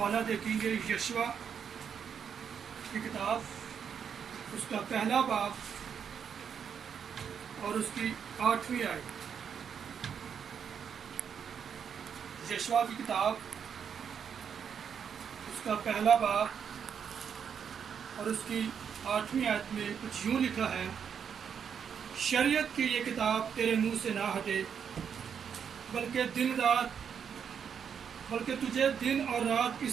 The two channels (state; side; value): quieter; left; 7.4 dB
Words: دیکھیں گے یشوع کی کتاب، اس کا پہلا باب اور اس کی 8ویں آیت۔ یشوع کی کتاب، اس کا پہلا باب اور اس کی 8ویں آیت میں کچھ یوں لکھا ہے: شریعت کی یہ کتاب تیرے منہ سے نہ ہٹے، بلکہ تجھے دن اور رات